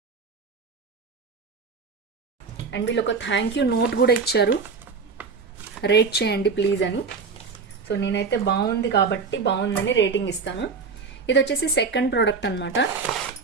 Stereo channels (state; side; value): quieter; left; 4.9 dB